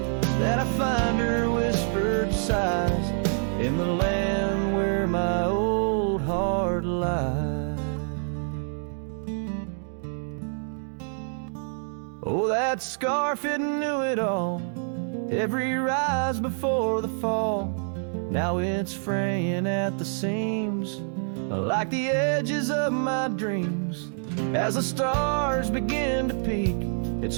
that I find her whispered sighs, in the land where my old heart lies. Oh, that scarf, it knew it all. Every rise before the fall. Now it's fraying at the seams, like the edges of my dreams. As the stars begin to peak, it's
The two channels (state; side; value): silent; left; 60 dB below the other